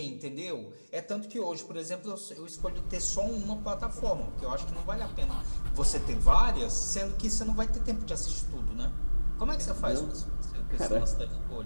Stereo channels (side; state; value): both; inverted; correlation -1.00